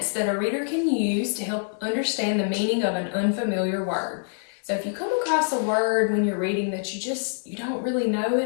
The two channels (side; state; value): right; silent; digital silence